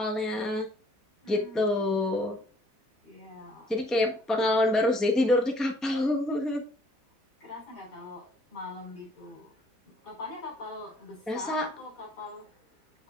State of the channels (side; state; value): both; normal; correlation 0.61